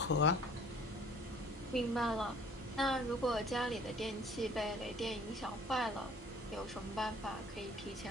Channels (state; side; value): normal; both; correlation 0.52